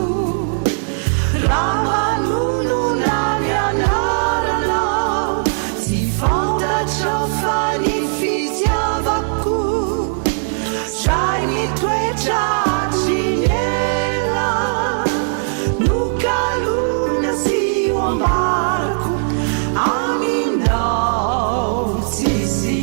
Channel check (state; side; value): silent; left; digital silence